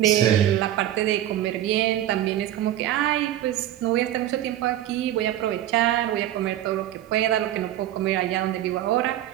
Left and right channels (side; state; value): left; quieter; 12.6 dB